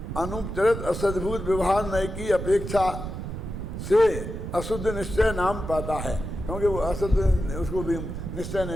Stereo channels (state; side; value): noise; right; rumble, 6 dB below the sound